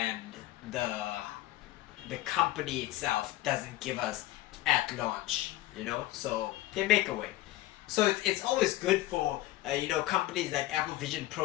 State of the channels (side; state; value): right; quieter; 16.6 dB